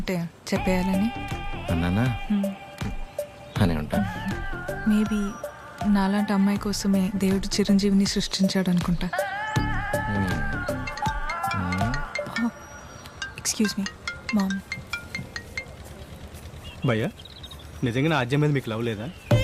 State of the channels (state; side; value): identical; both; correlation 1.00